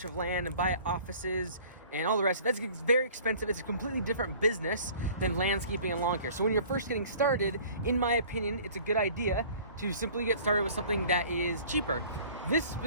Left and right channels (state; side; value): inverted; both; correlation -0.49